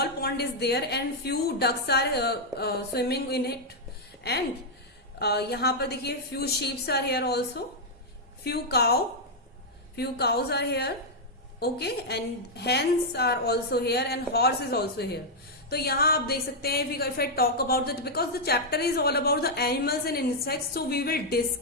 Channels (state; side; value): normal; both; correlation -0.03